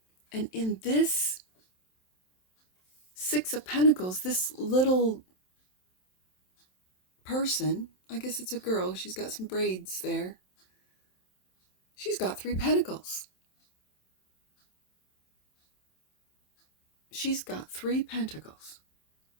And in this Six of Pentacles, this little person, I guess it's a girl, she's got some braids there. She's got 3 pentacles. She's got 3 pentacles.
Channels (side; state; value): right; late; 27 ms